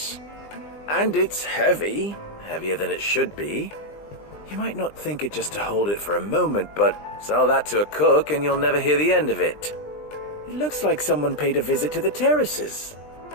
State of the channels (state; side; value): late; right; 20 ms